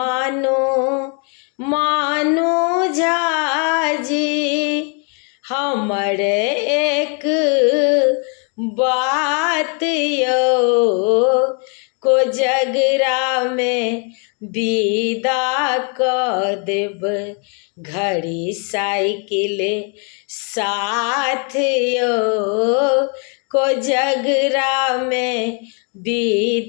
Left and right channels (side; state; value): right; quieter; 38.5 dB